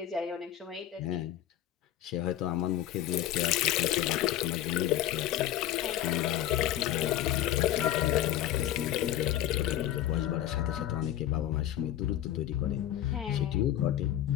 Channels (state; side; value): quieter; right; 12.4 dB